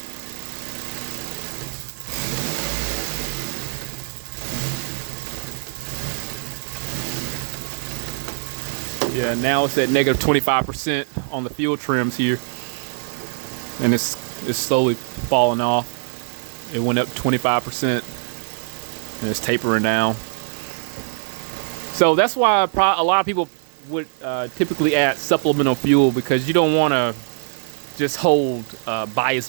yeah, now it's at negative 25% on the fuel trims here. And it's slowly falling off. It went up 25% and it's tapering down. So that's why a lot of people would typically add supplemental fuel, because you don't want to just hold bias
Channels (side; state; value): left; silent; digital silence